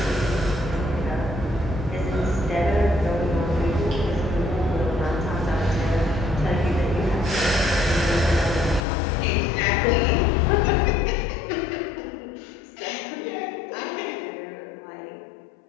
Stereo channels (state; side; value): drops out; right; at 8.8 s